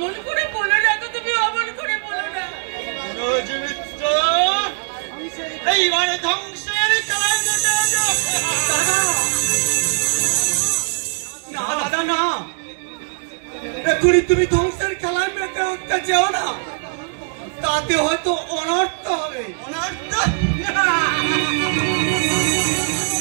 করে বলো না তো, তুমি অমন করে বলো না। মনোজ মিত্র এইবারে ধ্বংসের খেলায় মেতে আছে। না দাদা না, এখনই তুমি ধ্বংসের খেলায় মেতে উঠতে চাও না, তাতে হয়তো অনর্থ হবে। অনর্থ?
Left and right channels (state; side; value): silent; left; digital silence